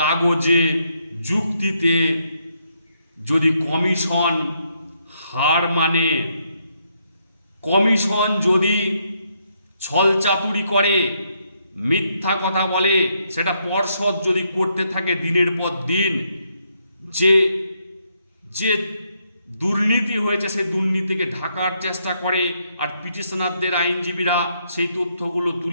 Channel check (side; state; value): both; inverted; correlation -0.76